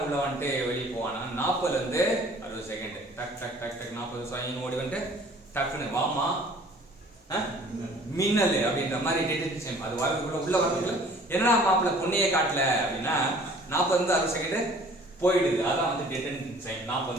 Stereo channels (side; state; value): both; normal; correlation 0.52